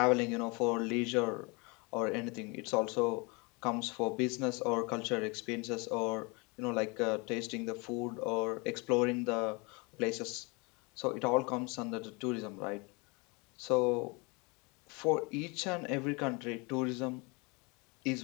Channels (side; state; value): right; quieter; 28.9 dB